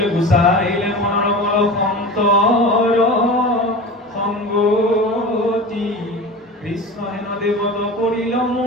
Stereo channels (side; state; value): both; normal; correlation 0.32